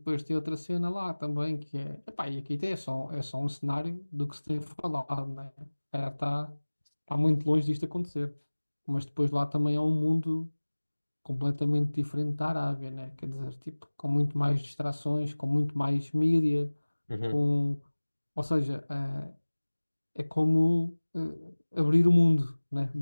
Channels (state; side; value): inverted; both; correlation -1.00